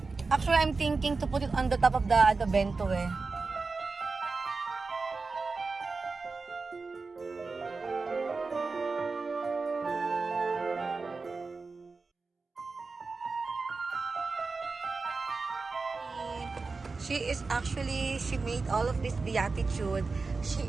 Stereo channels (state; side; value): quieter; left; 4.1 dB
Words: Actually, I'm thinking to put it on the top of the bento eh. She made all of this Beatitude. She